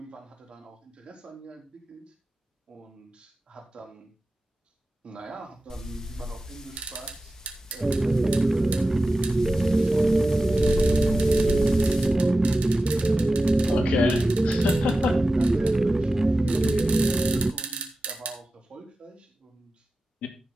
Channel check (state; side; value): normal; both; correlation 0.94